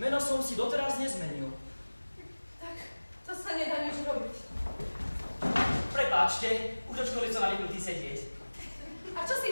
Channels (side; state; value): both; inverted; correlation -1.00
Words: som si doteraz nezmenil. Tak to sa nedá nič robiť. Prepáčte, už od školy som navyknutý sedieť. A čo si